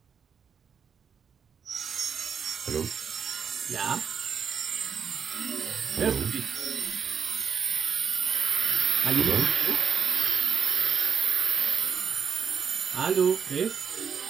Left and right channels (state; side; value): quieter; left; 6.9 dB